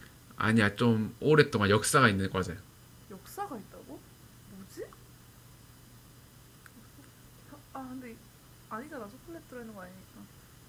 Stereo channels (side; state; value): both; identical; correlation 1.00